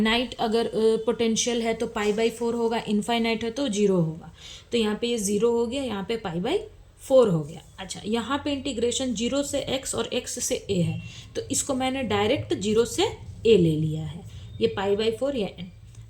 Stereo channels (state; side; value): identical; both; correlation 1.00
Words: अगर पोटेंशियल है तो π/4 होगा, इनफाइनाइट है तो 0 होगा। तो यहाँ पे ये 0 हो गया, यहाँ पे π/4 हो गया। अच्छा, यहाँ पे इंटीग्रेशन 0 से x और x से a है, तो इसको मैंने डायरेक्ट 0 से a ले लिया है, ये π/4 या n।